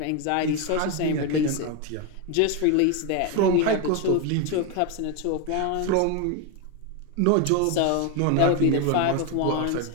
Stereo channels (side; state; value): both; different; correlation 0.02